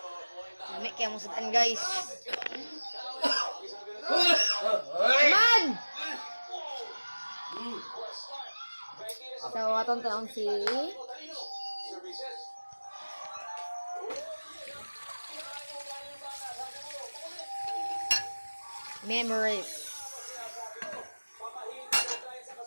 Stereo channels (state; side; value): inverted; both; correlation -1.00